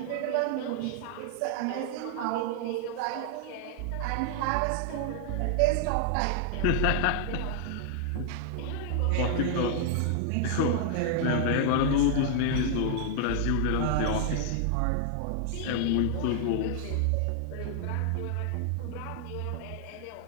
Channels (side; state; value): both; different; correlation 0.00